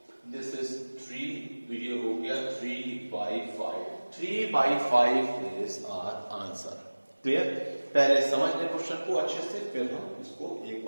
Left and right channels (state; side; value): inverted; both; correlation -1.00